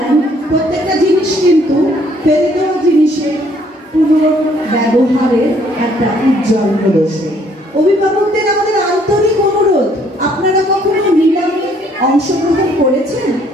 প্রত্যেকটা জিনিস কিন্তু ফেলে দেওয়া জিনিসের পুনর্ব্যবহারের একটা উজ্জ্বল প্রদর্শন। অভিভাবকদের আমাদের আন্তরিক অনুরোধ, আপনারা কখনো নিলামে অংশগ্রহণ করেছেন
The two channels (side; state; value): both; normal; correlation 0.64